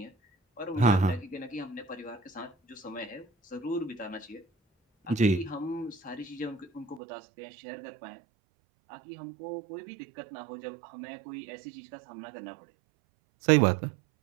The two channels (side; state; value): left; drops out; at 7.0 s